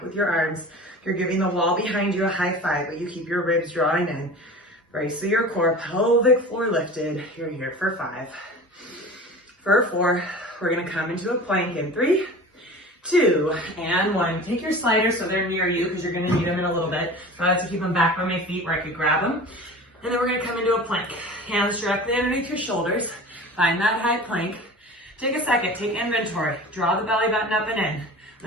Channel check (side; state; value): both; normal; correlation 0.37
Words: with your arms. You're giving the wall behind you a high 5, but you keep your ribs drawing in. Brace through your core, pelvic floor lifted. You're here for 5. For 4, we're gonna come into a plank in 3, 2, and 1. Take your sliders so they're near you because you're going to need them in a little bit. So I have to keep them back by my feet where I could grab them. And then we're going to come into a plank. Hands directly underneath your shoulders. Find that high plank. Take a second, take inventory. Draw the belly button up and in.